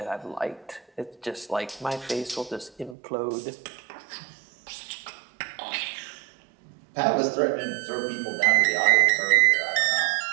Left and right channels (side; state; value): left; drops out; at 3.0 s